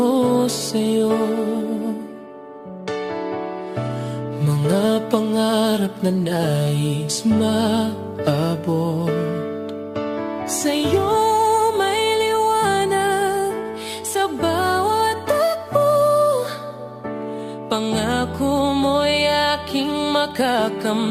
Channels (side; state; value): both; identical; correlation 1.00